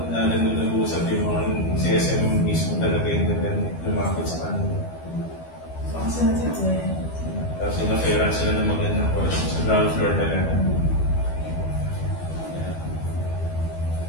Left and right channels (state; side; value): late; right; 12 ms